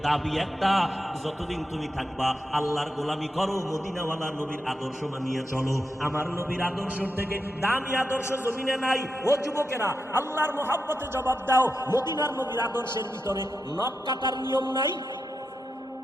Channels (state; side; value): normal; both; correlation 0.87